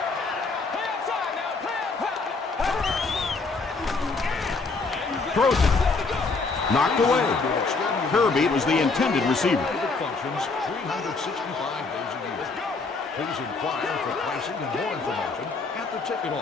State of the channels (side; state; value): right; quieter; 4.1 dB